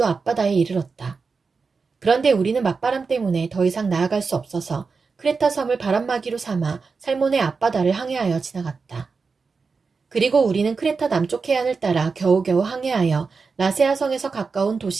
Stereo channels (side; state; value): left; quieter; 4.8 dB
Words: 앞바다에 이르렀다. 그런데 우리는 맞바람 때문에 더 이상 나아갈 수 없어서 크레타 섬을 바람막이로 삼아 살몬의 앞바다를 항해하여 지나갔다. 그리고 우리는 크레타 남쪽 해안을 따라 겨우겨우 항해하여 라세아 성에서 가까운